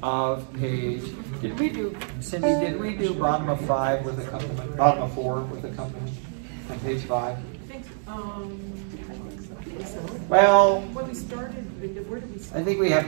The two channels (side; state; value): left; silent; digital silence